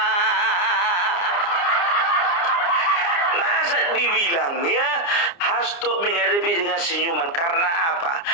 Masa dibilang ya Hasto menghadapi dengan senyuman, karena apa?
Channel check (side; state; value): right; late; 29 ms